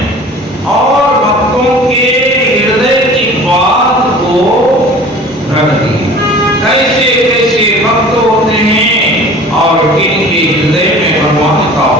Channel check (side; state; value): both; normal; correlation 0.44